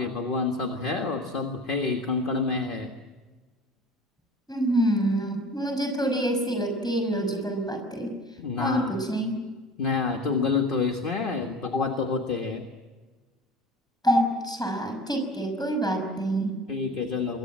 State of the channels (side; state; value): both; normal; correlation 0.39